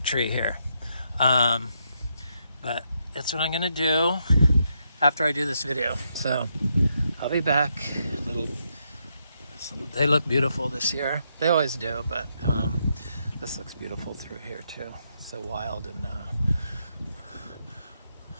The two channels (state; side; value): inverted; both; correlation -0.79